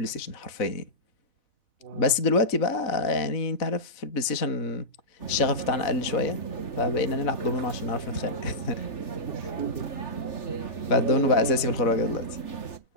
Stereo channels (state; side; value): late; right; 4.0 ms